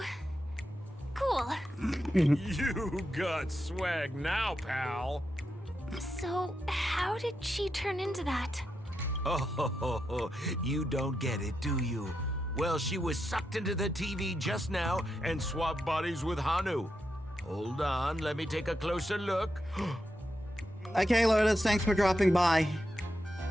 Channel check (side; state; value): both; normal; correlation 0.86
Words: cool. You got swag now, pal. So, how did she turn into that? Oh, you don't get it, do you? Well, she was sucked into the TV just now and swapped bodies with Hanu. Hold on, let me take a closer look. Okay, Lotus, thanks for dropping by.